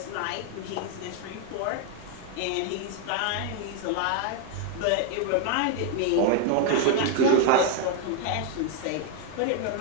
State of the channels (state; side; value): different; both; correlation 0.00